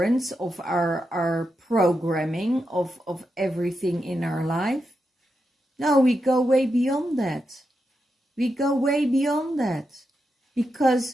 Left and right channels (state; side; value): normal; both; correlation 0.86